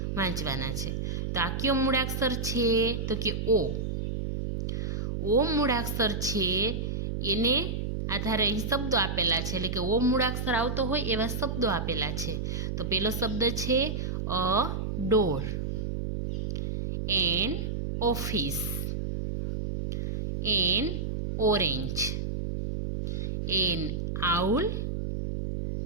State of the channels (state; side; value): noise; right; hum, 2 dB below the sound